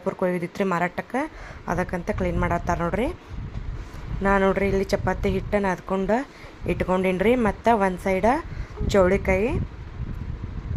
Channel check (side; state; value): both; identical; correlation 1.00